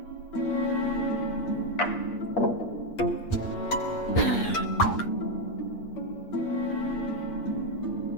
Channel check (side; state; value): right; late; 8.5 ms